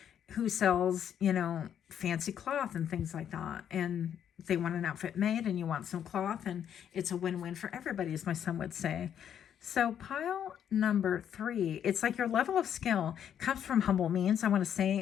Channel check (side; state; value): right; quieter; 9.2 dB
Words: sells, you know, fancy cloth and things like that. And they want an outfit made, and you want some cloth, and it's a win-win for everybody, as my son would say. So pile number 3, it's like your level of skill comes from humble means, I want to